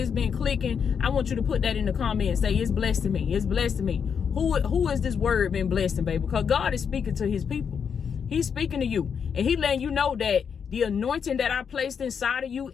been clicking, I want you to put that in the comments. Say, it's blessing me. It's blessing me. Who is this word been blessing, baby? Because God is speaking to his people. He's speaking to you. And he letting you know that the anointing that I placed inside of you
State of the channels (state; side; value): quieter; right; 6.9 dB